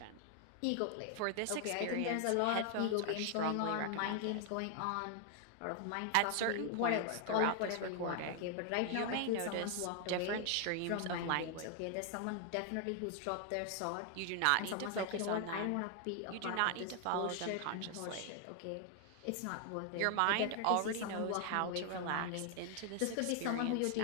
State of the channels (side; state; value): both; different; correlation 0.00